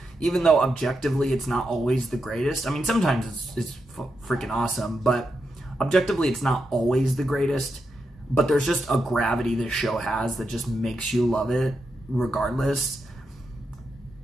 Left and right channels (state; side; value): normal; both; correlation 0.85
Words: even though objectively it's not always the greatest. I mean, sometimes it's freaking awesome, but objectively it's not always the greatest, but there's just a gravity this show has that just makes you love it regardless.